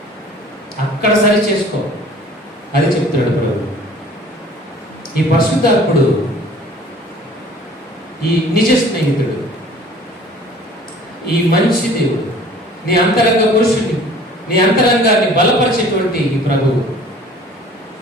అక్కడ సరి చేసుకో. అది చెప్తున్నాడు ప్రభు. ఈ పరిశుద్ధాత్ముడు, ఈ నిజ స్నేహితుడు, ఈ మంచి దేవుడు, నీ అంతరంగ పురుషుని, నీ అంతరంగాన్ని బలపరిచేటువంటి ఈ ప్రభువు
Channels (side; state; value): both; normal; correlation 0.50